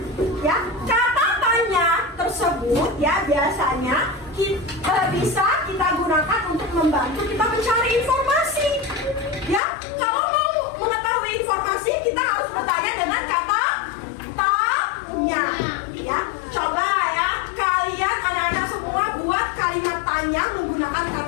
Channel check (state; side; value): drops out; right; at 9.6 s